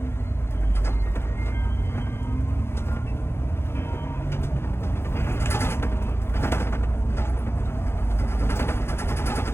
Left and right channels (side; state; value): right; late; 0.12 ms